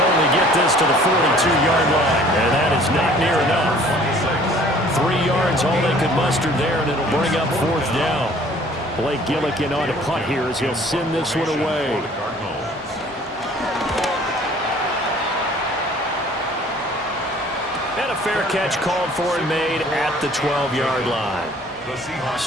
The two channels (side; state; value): left; noise; hum, 25 dB below the sound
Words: get this to the 42-yard line. And that is not near enough. 3 yards, all they could muster there, and it'll bring up 4th down. Blake Gillikin on to punt here as he'll send this one away. And a fair catch called for and made at the 12-yard line.